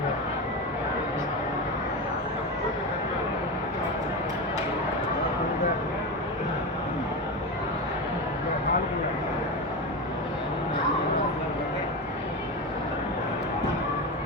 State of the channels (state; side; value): normal; both; correlation 0.19